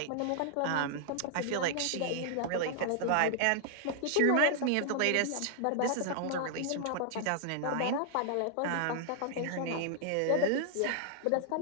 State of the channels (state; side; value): different; both; correlation 0.00